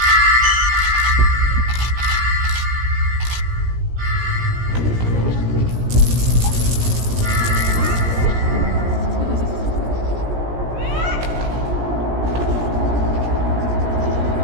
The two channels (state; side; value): late; left; 17 ms